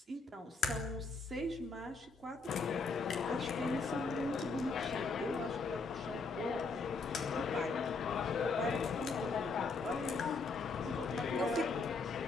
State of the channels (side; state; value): right; quieter; 4.1 dB